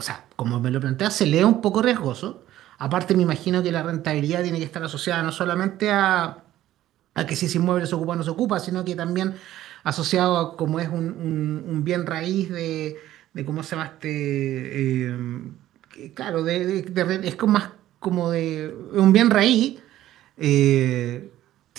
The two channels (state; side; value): quieter; left; 13.7 dB